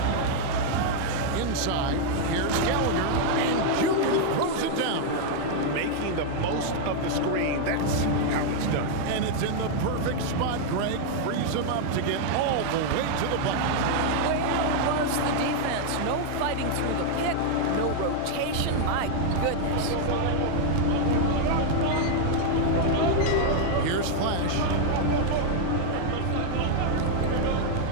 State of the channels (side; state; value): both; different; correlation 0.00